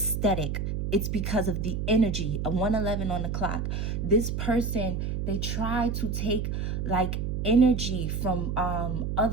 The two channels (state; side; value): noise; right; hum, 2 dB below the sound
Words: it's because of the energy. A 111 on the clock. This person, they try to take like energy from